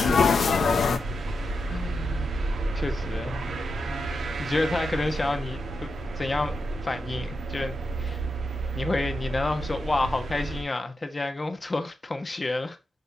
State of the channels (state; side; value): normal; both; correlation 0.87